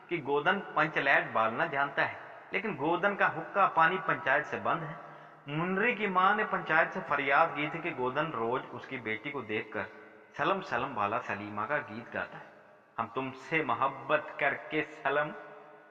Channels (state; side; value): identical; both; correlation 1.00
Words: कि गोदन पंचलैट बालना जानता है, लेकिन गोदन का हुक्का पानी पंचायत से बंद है। मुंडरी की मां ने पंचायत से फरियाद की थी कि गोदन रोज उसकी बेटी को देखकर सलम सलम वाला सलीमा का गीत गाता है, हम तुमसे मोहब्बत करके सलम।